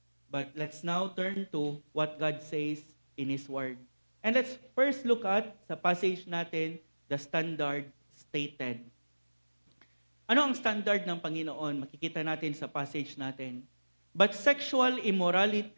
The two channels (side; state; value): both; inverted; correlation -1.00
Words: But let's now turn to what God says in His Word. And let's first look at, sa passage natin, the standard stated. Ano ang standard ng Panginoon? Makikita natin sa passage natin. But sexual